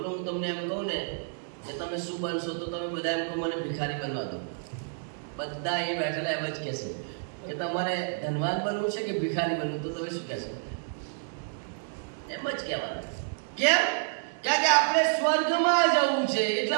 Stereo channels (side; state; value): left; silent; digital silence